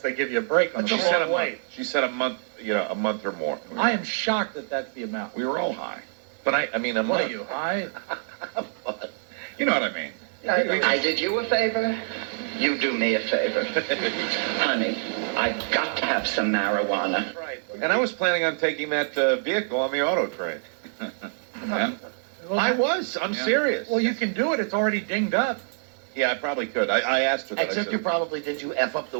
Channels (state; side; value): silent; left; digital silence